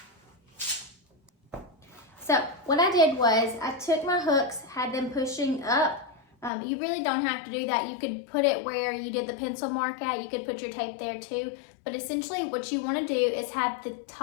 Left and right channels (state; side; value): drops out; right; at 6.5 s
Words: So what I did was I took my hooks, had them pushing up. You really don't have to do that. You could put it where you did the pencil mark at. You could put your tape there too. But essentially what you want to do is have the